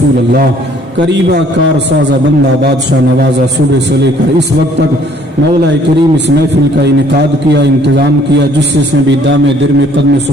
اللہ۔ قریبہ کار سازہ بندہ بادشاہ نوازہ صبح سے لے کر اس وقت تک مولا کریم اس محفل کا انعقاد کیا، انتظام کیا، جس سے بھی دام درم قدم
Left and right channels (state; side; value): normal; both; correlation 0.59